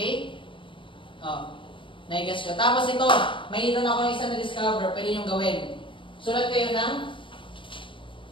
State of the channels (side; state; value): right; late; 0.24 ms